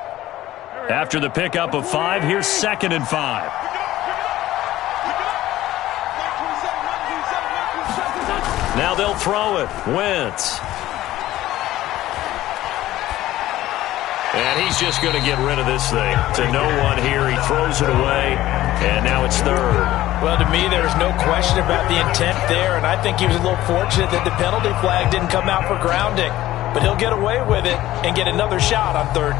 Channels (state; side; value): quieter; right; 15.0 dB